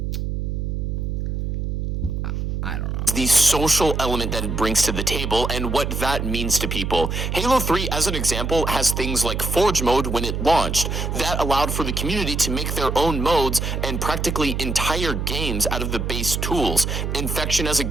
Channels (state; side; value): noise; right; hum, 2 dB below the sound